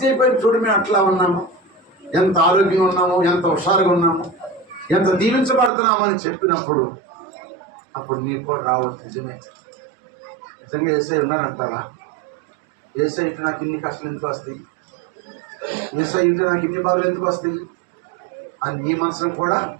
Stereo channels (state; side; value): drops out; left; at 5.7 s